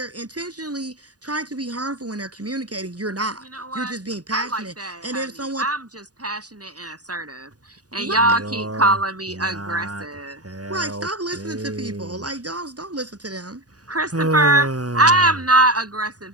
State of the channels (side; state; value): left; late; 0.68 ms